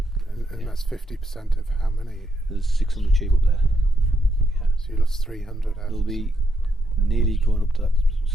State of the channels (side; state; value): both; normal; correlation 0.79